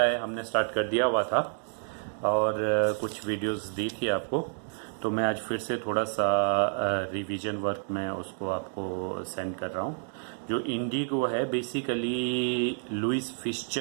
है हमने स्टार्ट कर दिया हुआ था और कुछ वीडियोस दी थी आपको, तो मैं आज फिर से थोड़ा सा रिवीजन वर्क में उसको आपको सेंड कर रहा हूँ। जो इंडिगो है बेसिकली लुइस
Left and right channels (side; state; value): left; silent; digital silence